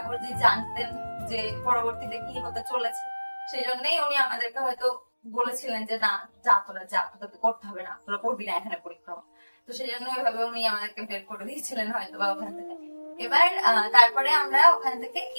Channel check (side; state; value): both; inverted; correlation -1.00